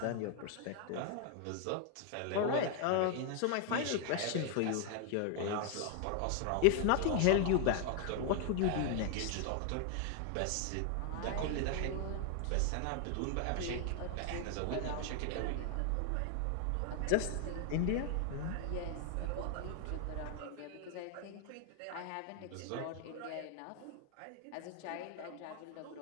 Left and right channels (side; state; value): both; different; correlation 0.00